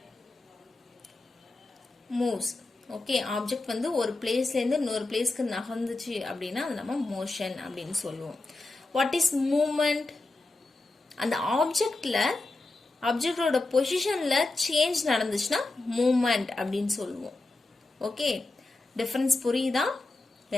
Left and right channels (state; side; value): quieter; right; 3.1 dB